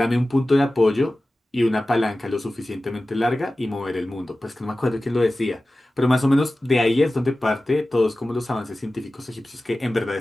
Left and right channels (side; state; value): both; normal; correlation 0.96